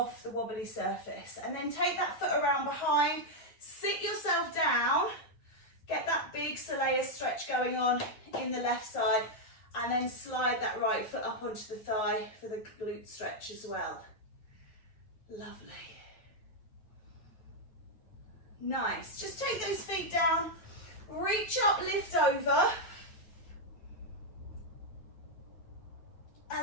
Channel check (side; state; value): right; late; 9.1 ms